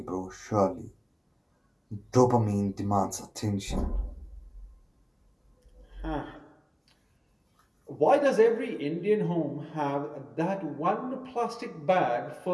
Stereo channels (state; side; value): identical; both; correlation 1.00